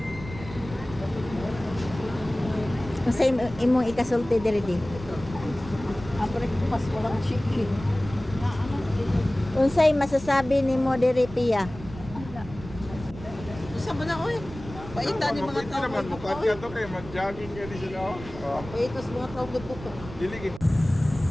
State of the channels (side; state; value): right; noise; rumble, 14 dB below the sound